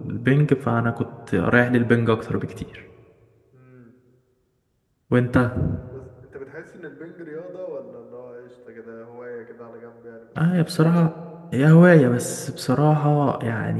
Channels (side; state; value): both; identical; correlation 1.00